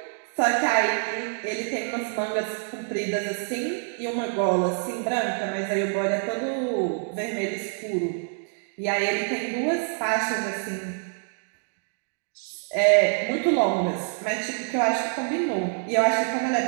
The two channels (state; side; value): silent; left; 61 dB below the other